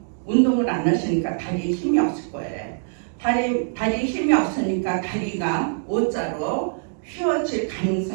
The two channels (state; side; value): silent; left; digital silence